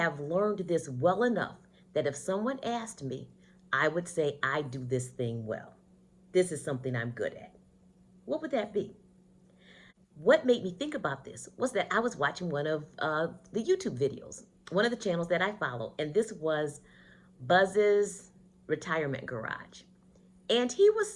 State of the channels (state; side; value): identical; both; correlation 1.00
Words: learned this well enough that if someone asked me, I would say I do this thing well. This is something I'm good at. What would that be? What made me think about this was that I was watching one of the YouTube videos, one of the channels that I follow, and this was Buzz's Retirement Garage. And he was